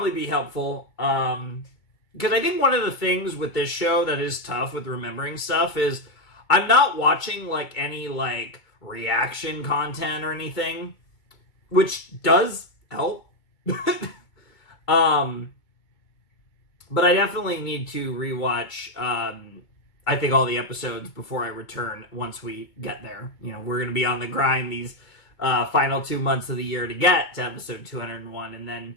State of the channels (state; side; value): late; right; 2.2 ms